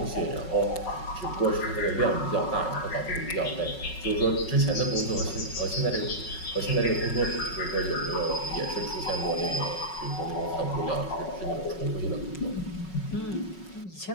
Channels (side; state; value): right; late; 5.4 ms